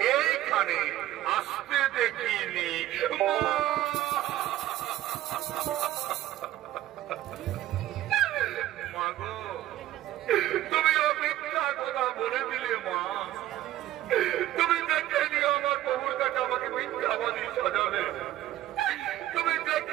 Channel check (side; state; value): left; quieter; 14.1 dB